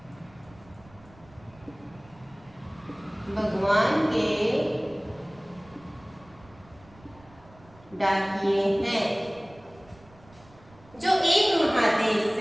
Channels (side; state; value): right; noise; rumble, 25 dB below the sound